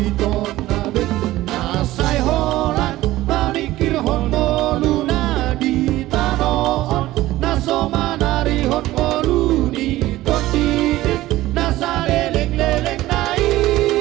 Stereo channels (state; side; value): quieter; left; 16.4 dB